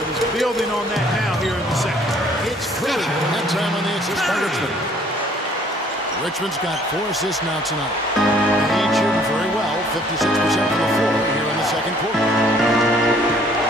he's building on that now here in the second. It's Curry, that time on the assist by Richmond. Richmond's got 4 assists now tonight. The Heat shooting very well, 56% from the floor here in the second quarter.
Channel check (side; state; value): both; normal; correlation 0.59